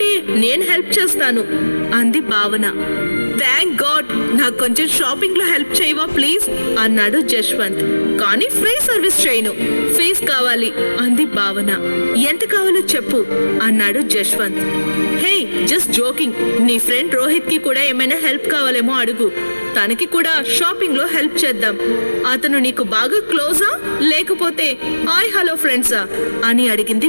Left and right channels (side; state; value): both; inverted; correlation -1.00